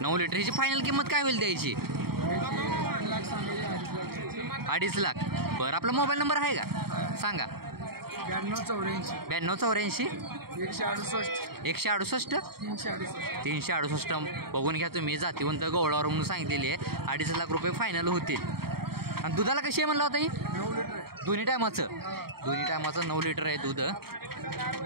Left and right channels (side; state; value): left; late; 0.95 ms